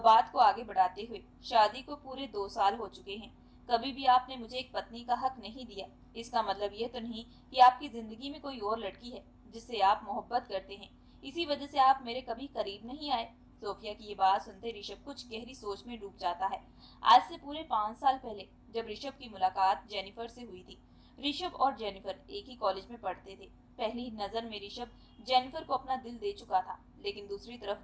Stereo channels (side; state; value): both; identical; correlation 1.00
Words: को आगे बढ़ाते हुए, शादी को पूरे 2 साल हो चुके हैं, कभी भी आपने मुझे एक पत्नी का हक नहीं दिया। इसका मतलब यह तो नहीं कि आपकी जिंदगी में कोई और लड़की है जिससे आप मोहब्बत करते हैं, इसी वजह से आप मेरे कभी करीब नहीं आए। सोफिया की ये बात सुनते ऋषभ कुछ गहरी सोच में डूब जाता है। आज से पूरे 5 साल पहले जब ऋषभ की मुलाकात जेनिफर से हुई थी, ऋषभ और जेनिफर एक ही कॉलेज में पढ़ते थे। पहली नजर में ऋषभ जेनिफर को अपना दिल दे चुका था, लेकिन दूसरी तरफ